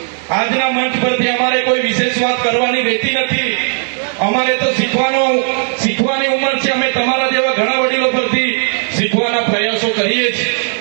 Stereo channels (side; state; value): left; silent; 57 dB below the other